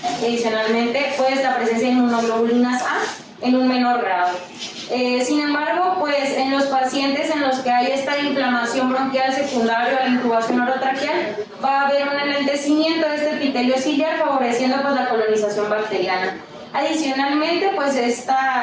Adicionalmente, pues la presencia de inmunoglobulinas A en un menor grado. Sin embargo, pues en los pacientes en los que hay esta inflamación bronquial secundaria a la intubación orotraqueal, va a haber un enlentecimiento de este epitelio ciliar, favoreciendo pues la colonización bacteriana. Adicionalmente, pues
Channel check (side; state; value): both; identical; correlation 1.00